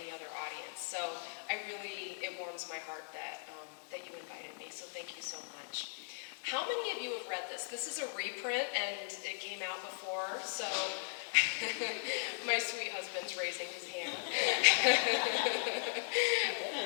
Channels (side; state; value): right; silent; digital silence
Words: other audience. So it warms my heart that, that you invited me, so thank you so much. How many of you have read this? This is a reprint and it came out before, so my sweet husband's raising his hand.